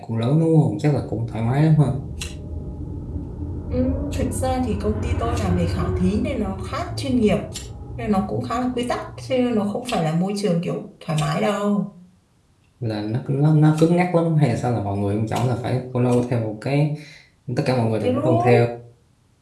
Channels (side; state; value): both; identical; correlation 1.00